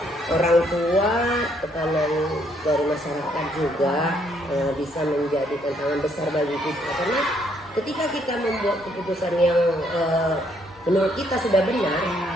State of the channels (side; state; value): both; normal; correlation 0.70